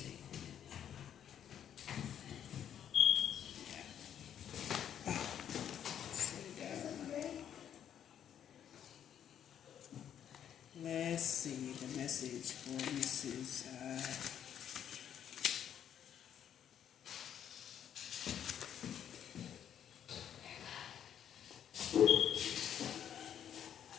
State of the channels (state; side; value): quieter; right; 9.5 dB